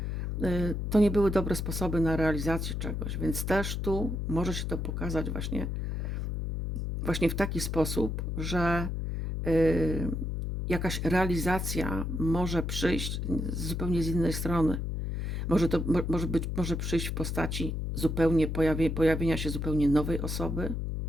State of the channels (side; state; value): left; noise; hum, 2 dB below the sound